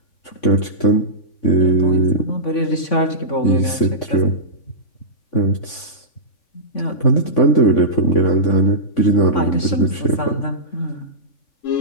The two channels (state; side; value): late; right; 3.5 ms